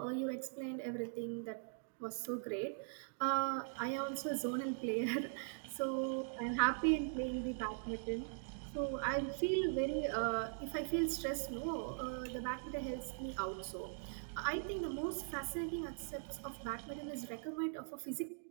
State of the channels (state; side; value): silent; left; digital silence